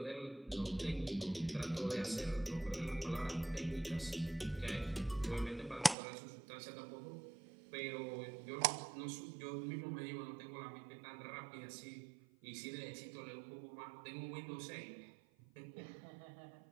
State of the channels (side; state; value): left; drops out; at 6.0 s